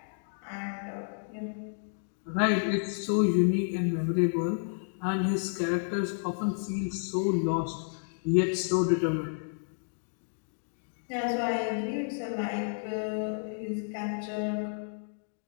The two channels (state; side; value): silent; right; digital silence